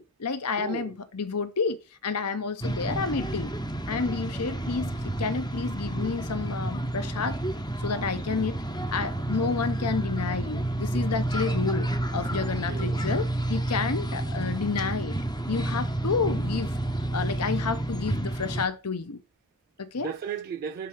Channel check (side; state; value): both; normal; correlation 0.41